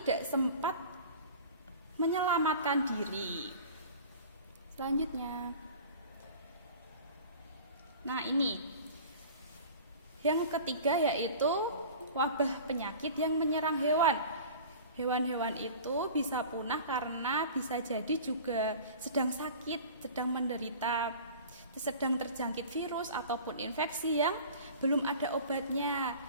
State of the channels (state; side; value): inverted; both; correlation -0.40